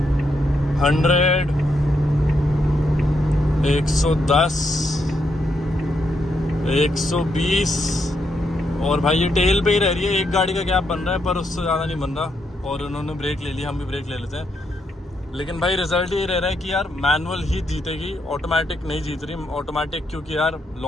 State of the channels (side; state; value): both; normal; correlation 0.79